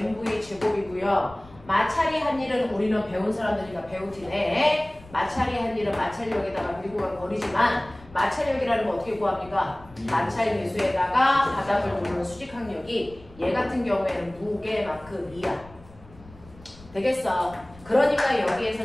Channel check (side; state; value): left; noise; rumble, 22 dB below the sound